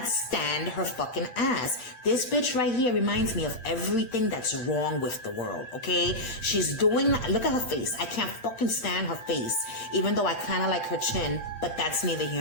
stand her fucking ass. This bitch right here reminds me of everything that's wrong with the world, okay? She's doing, look at her face. I can't fucking stand her face, even though I kind of like her chin, but that's neither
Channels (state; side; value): late; right; 8.8 ms